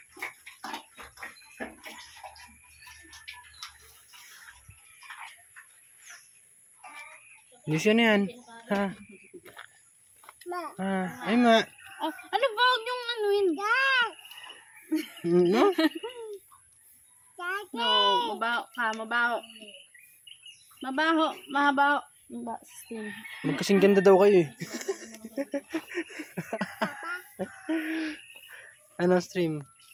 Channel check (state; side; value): identical; both; correlation 1.00